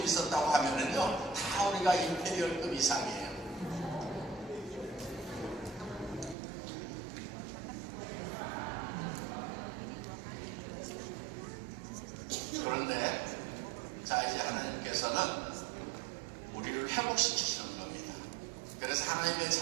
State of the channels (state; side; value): drops out; left; at 6.4 s